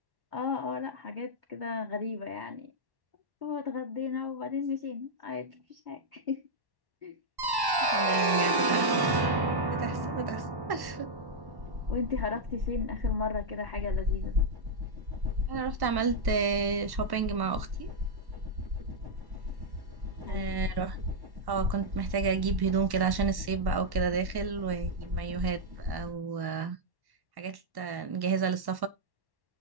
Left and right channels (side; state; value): left; late; 1.1 ms